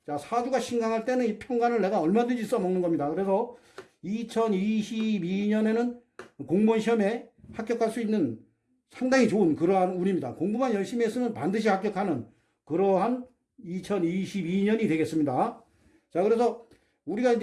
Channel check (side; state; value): both; identical; correlation 1.00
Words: 자, 사주가 신강할 때는 이 편관을 내가 얼마든지 써먹는 겁니다. 그래서 2022년에는 공무원 시험에 합격할 수 있는 상당히 좋은 그러한 운입니다. 공부만 열심히 했으면 반드시 합격하는 그러한 2022년이 되겠습니다. 자, 그래서 우리가